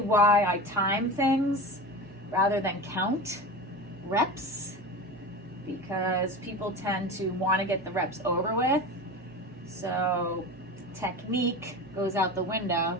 I time things rather than count reps, because people tend to want to get the reps over with. So technique goes out the window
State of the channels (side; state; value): both; normal; correlation 0.29